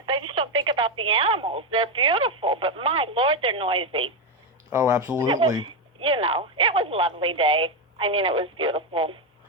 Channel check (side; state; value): both; normal; correlation 0.07